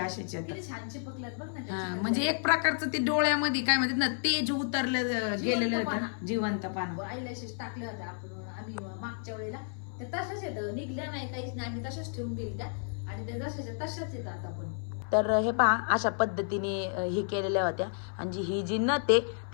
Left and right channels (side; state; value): right; silent; 57 dB below the other